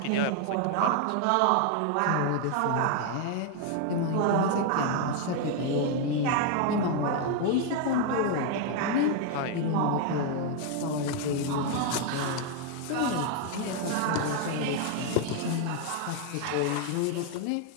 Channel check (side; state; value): both; different; correlation 0.01